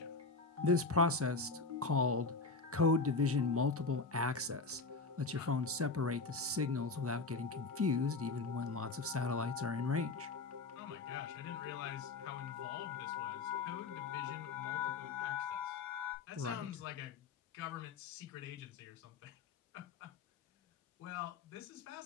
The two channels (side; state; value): right; quieter; 3.9 dB